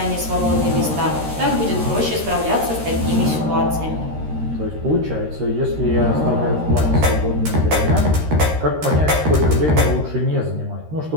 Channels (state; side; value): late; left; 13 ms